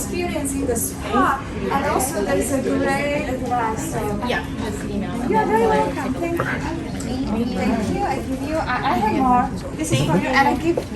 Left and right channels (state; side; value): identical; both; correlation 1.00